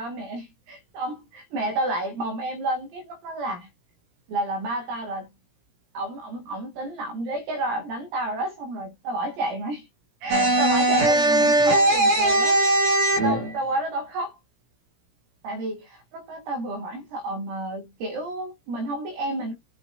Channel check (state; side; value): late; left; 17 ms